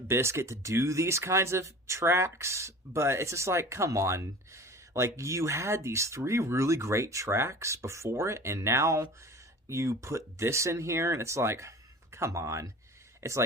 Bizkit to do these kinds of tracks, but it's just like, come on. Like, you had these three really great tracks before it, and now you put this in here, and it's like, come on. It's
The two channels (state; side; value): normal; both; correlation 0.40